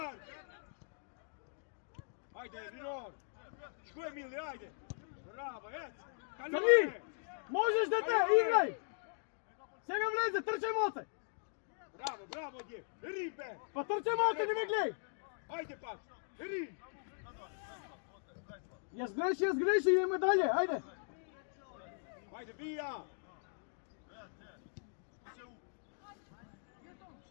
Ajde, Rinor. Što je Mili, ajde. Bravo, ec. Crni, možeš dete, igraj. Сега влезе, трчай моце. Bravo, bravo, dje. Ribe. Pa trčaj moce, не ме гледай. Ajde, pa. Ri. Јас греши, идеме далje, ајде. Ajde, bija.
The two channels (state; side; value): silent; right; digital silence